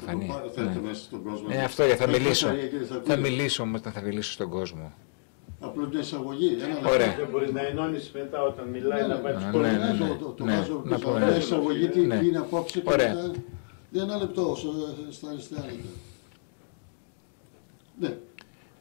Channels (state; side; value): silent; right; digital silence